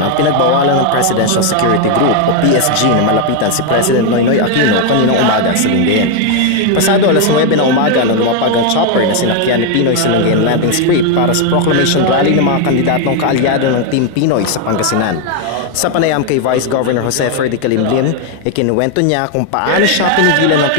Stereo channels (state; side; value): different; both; correlation 0.01